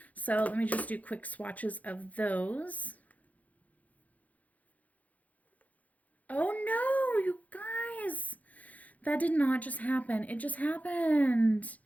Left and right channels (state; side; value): late; right; 0.074 ms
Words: So let me just do quick swatches of those. Oh no, you guys! That did not just happen. It just happened.